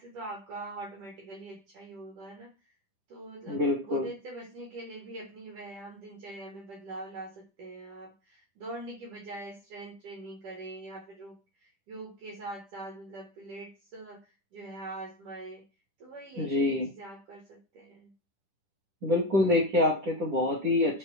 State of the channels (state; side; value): late; left; 10 ms